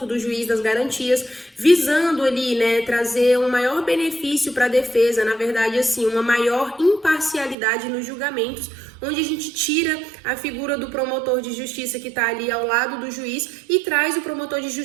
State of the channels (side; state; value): left; drops out; at 7.6 s